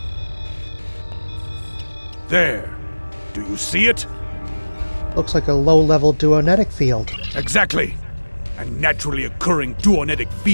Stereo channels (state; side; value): inverted; both; correlation -1.00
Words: There. Do you see it? Looks like a low-level duonetic field. Exactly. And naturally occurring duonetic